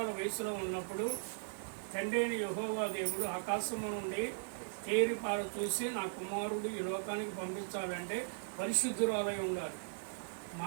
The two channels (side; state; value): left; silent; digital silence